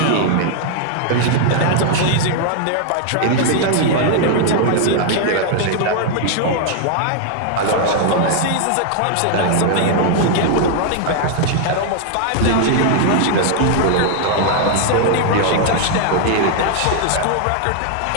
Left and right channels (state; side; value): different; both; correlation 0.00